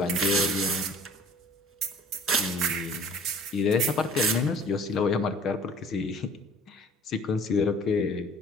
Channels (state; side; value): normal; both; correlation 0.50